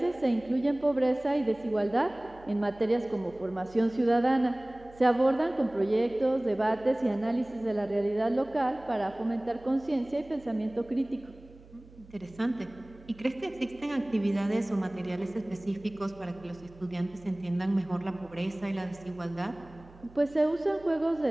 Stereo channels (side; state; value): right; noise; hum, 23 dB below the sound